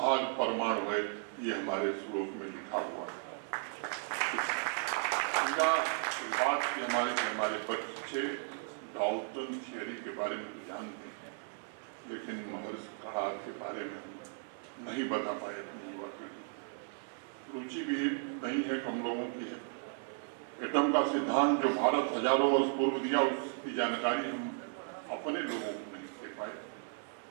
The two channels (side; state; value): left; silent; 54 dB below the other